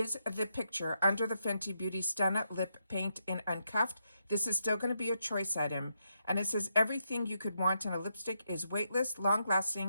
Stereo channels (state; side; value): inverted; both; correlation -0.81